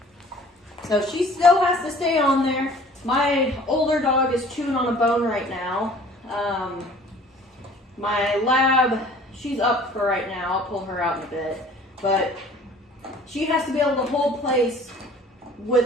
So she still has to stay on there. My older dog is chewing on a bone right now. My lab, she's up for right now. I'll pull her out in a bit. But she has to be able to hold place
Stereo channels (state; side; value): normal; both; correlation 0.50